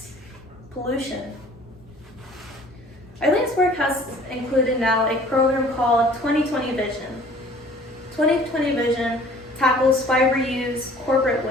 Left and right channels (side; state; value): both; normal; correlation 0.51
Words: pollution. Eileen's work has included now a program called 2020 Vision. 2020 Vision tackles fiber use, corporate